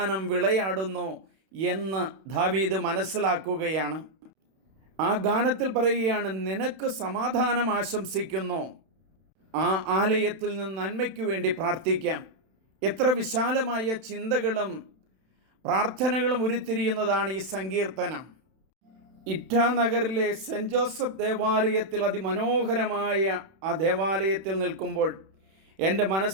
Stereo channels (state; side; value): late; left; 31 ms